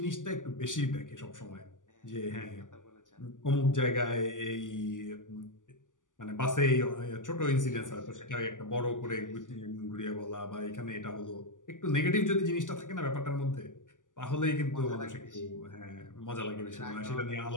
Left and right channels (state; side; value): late; right; 0.87 ms